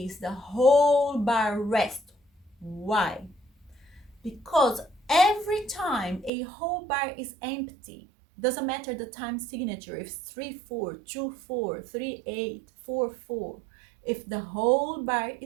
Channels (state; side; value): drops out; left; at 6.3 s